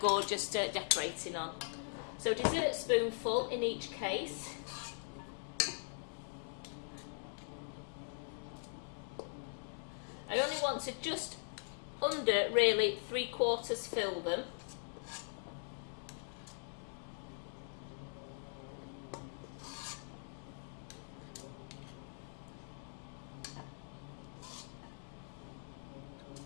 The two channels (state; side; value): silent; right; digital silence